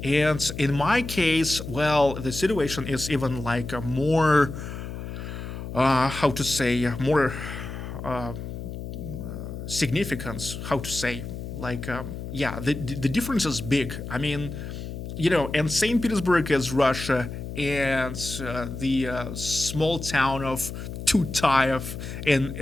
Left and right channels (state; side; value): noise; left; hum, 8 dB below the sound